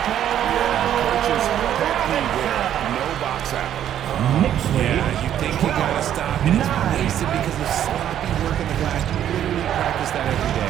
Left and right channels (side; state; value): left; quieter; 10.6 dB